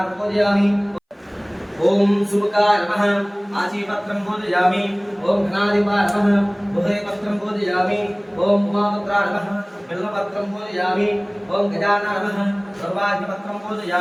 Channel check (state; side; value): identical; both; correlation 1.00